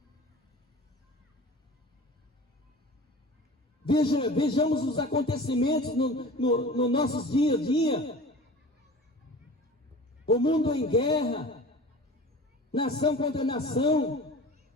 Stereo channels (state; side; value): normal; both; correlation 0.39